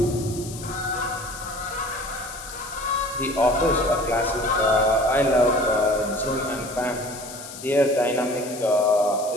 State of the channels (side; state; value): left; noise; hiss, 13 dB below the sound